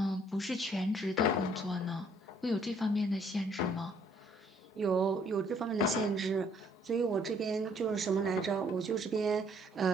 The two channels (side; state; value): both; normal; correlation 0.64